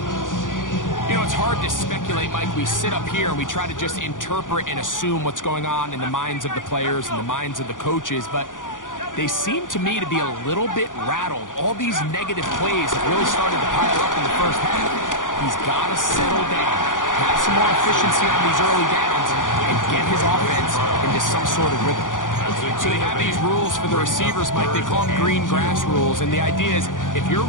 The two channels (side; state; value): right; late; 0.88 ms